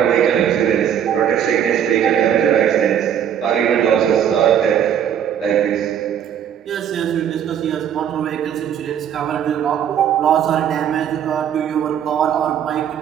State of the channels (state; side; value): quieter; left; 9.2 dB